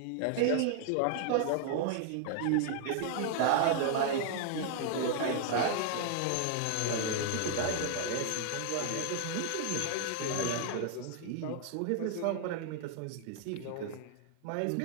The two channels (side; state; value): both; different; correlation 0.00